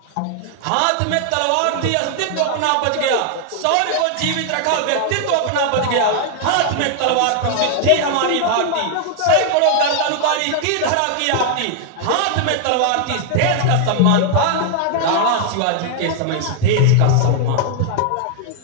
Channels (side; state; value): both; different; correlation 0.00